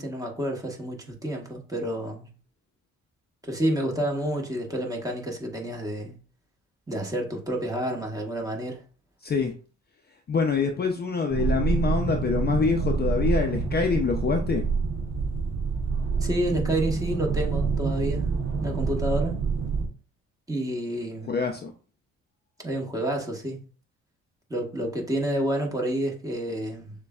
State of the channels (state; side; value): normal; both; correlation 0.62